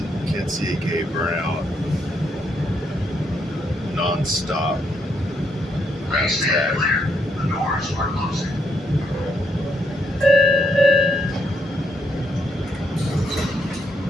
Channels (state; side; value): normal; both; correlation 0.76